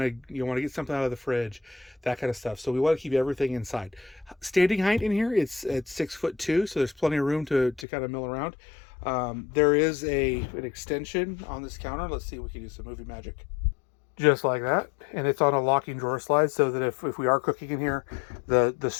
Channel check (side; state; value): right; drops out; at 7.9 s